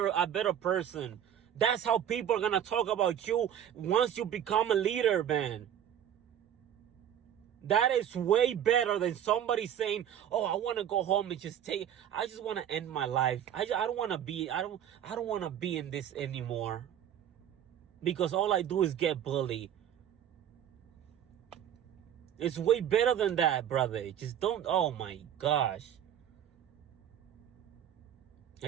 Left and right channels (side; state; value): left; quieter; 10.0 dB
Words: person. That's how people are gonna talk about you once you become a leader, man. That is way better than somebody saying, "Oh, I want to go home and I just want to end my life. I don't want to be. I don't want to be in this anymore, because all I do is get bullied." It's way better than that, brother. Just don't. Oh my gosh. I